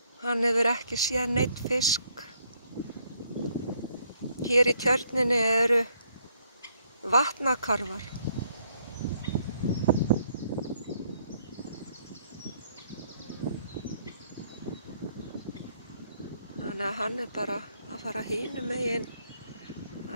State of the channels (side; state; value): both; inverted; correlation -0.69